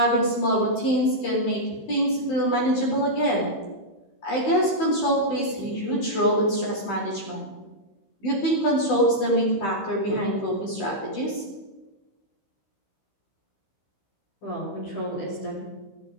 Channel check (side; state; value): right; late; 15 ms